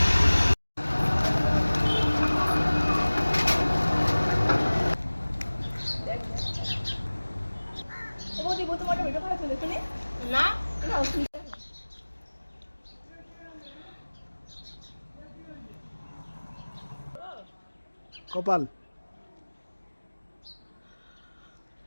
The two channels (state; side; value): inverted; both; correlation -1.00